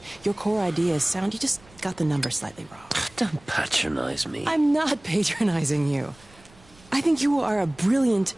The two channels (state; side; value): noise; right; rumble, 26 dB below the sound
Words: Your core idea is sound, you just got the numbers slightly wrong. Don't patronize me. I'm not patronizing you. I think you are a brilliant